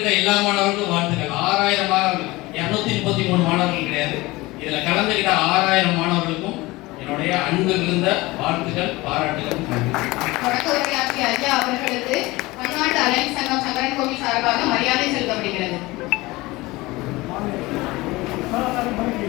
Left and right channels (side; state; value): right; quieter; 20.9 dB